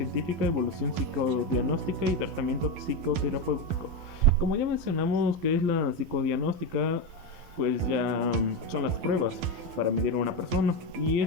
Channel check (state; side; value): late; left; 12 ms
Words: evolución psicodiagnóstica y tratamiento psicoterapéutico. Como ya mencionamos que es la psicodiagnóstica, pues ya son las pruebas para medir a una persona, y